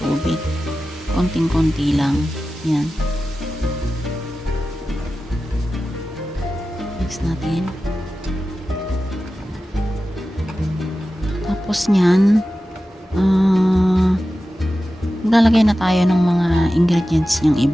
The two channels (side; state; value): both; normal; correlation 0.94